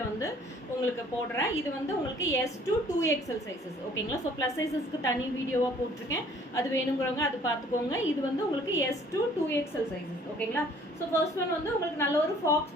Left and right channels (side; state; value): both; normal; correlation 0.56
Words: வந்து உங்களுக்கு போடுறேன். இது வந்து உங்களுக்கு S2 2XL சைஸஸ் ஓகேங்களா. ஸோ ப்ளஸ் சைஸஸ்க்கு தனி வீடியோவாக போட்டிருக்கேன், அது வேணுங்கிறவங்க அது பார்த்துக்கோங்க. இது வந்து உங்களுக்கு S2 2XL சைஸஸ் ஓகேங்களா. ஸோ ஃபர்ஸ்ட் ஒன் வந்து உங்களுக்கு நல்ல ஒரு ஃபாக்ஸ்